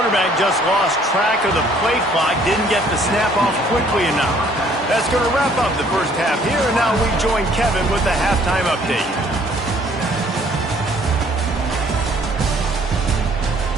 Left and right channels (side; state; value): both; normal; correlation 0.60